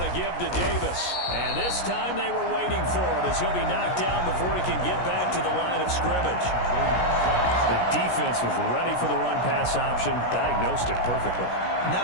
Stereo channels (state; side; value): late; right; 17 ms